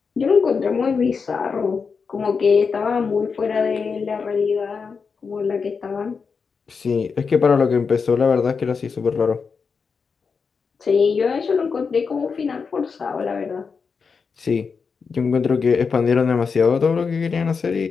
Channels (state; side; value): quieter; right; 5.4 dB